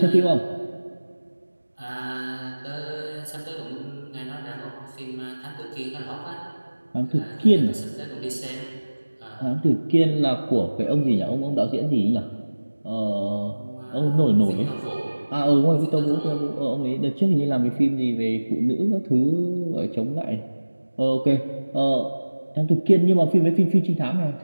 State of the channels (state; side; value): inverted; both; correlation -1.00